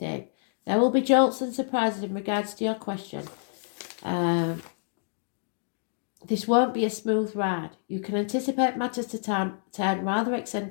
There will be jolts and surprises in regards to your question. This won't be a smooth ride. You can anticipate matters to turn rather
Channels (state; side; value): silent; right; digital silence